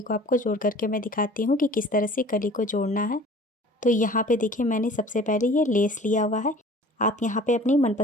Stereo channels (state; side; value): normal; both; correlation 0.47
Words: को आपको जोड़ करके मैं दिखाती हूँ कि किस तरह से कली को जोड़ना है। तो यहाँ पे देखिए मैंने सबसे पहले ये लेस लिया हुआ है। आप यहाँ पे अपनी